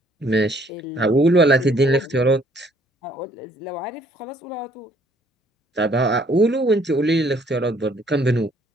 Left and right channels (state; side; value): normal; both; correlation 0.63